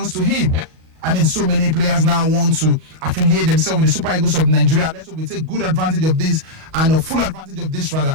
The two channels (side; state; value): left; late; 38 ms